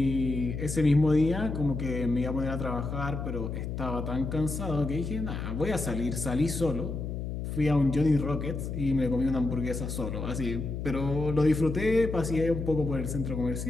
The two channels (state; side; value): noise; left; hum, 4 dB below the sound